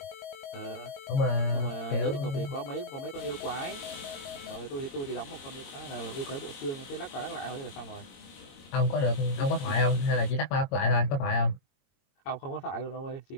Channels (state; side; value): late; right; 22 ms